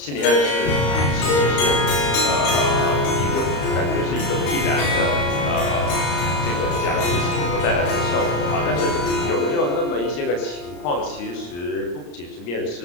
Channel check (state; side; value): late; right; 34 ms